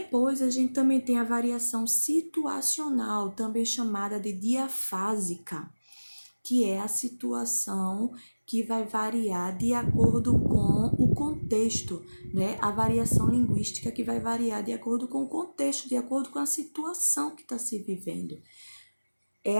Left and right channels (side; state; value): both; inverted; correlation -1.00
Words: a gente também tem a variação situacional, também chamada de diafásica, que é a situação que vai variar de acordo com o contexto, né? A variação linguística que vai variar de acordo com o contexto, de acordo com a situação que está se vivendo.